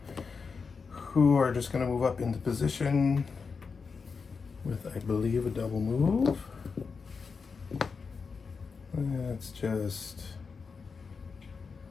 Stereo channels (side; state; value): right; quieter; 5.2 dB